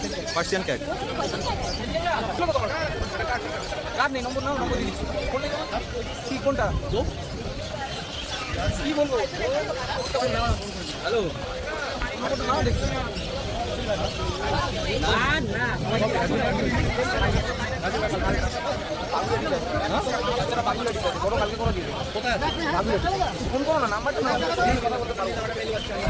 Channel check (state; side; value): identical; both; correlation 1.00